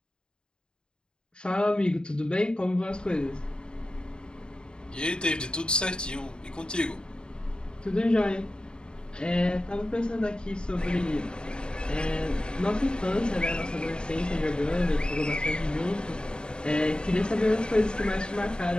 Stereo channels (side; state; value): right; late; 0.050 ms